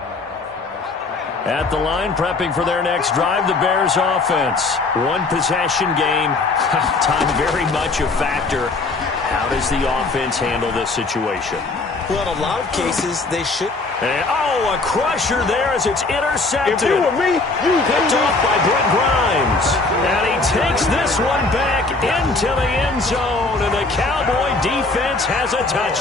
At the line, prepping for their next drive, the Bears offense. 1-possession game. Time very much a factor. How does the offense handle this situation? Well, in a lot of cases, they should. And, a crusher there as it's intercepted. If you were me, you picked off by Brent Grimes. And he takes this one back into the end zone, and the Cowboy defense has a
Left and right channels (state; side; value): quieter; right; 3.6 dB